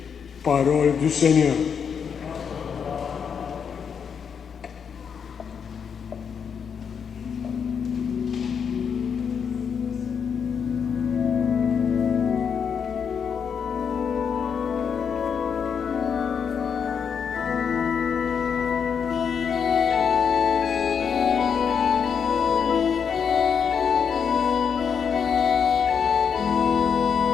Parole du Seigneur.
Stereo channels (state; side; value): quieter; right; 6.9 dB